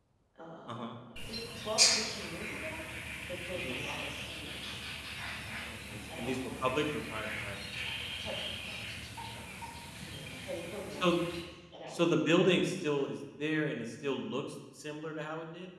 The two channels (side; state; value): both; identical; correlation 1.00